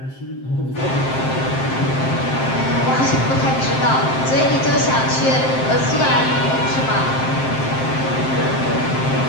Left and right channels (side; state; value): right; late; 7.6 ms